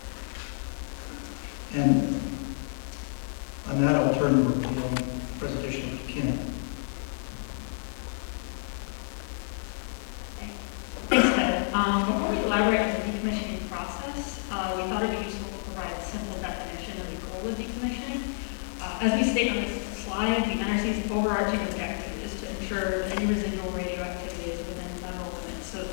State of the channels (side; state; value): right; silent; digital silence